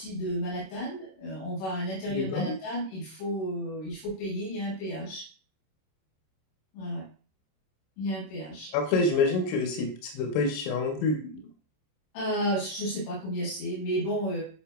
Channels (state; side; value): late; right; 26 ms